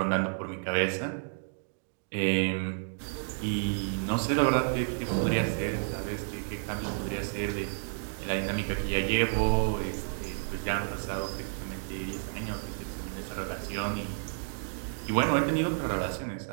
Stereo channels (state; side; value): silent; left; digital silence